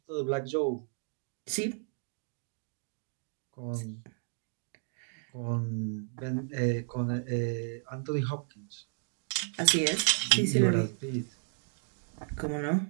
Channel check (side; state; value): left; silent; 56 dB below the other